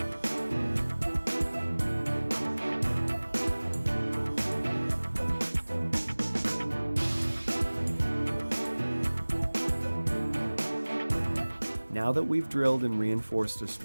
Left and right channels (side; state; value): both; inverted; correlation -1.00